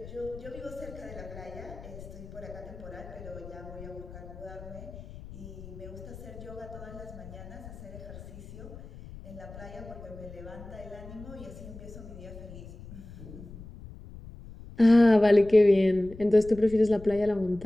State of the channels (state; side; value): noise; left; rumble, 15 dB below the sound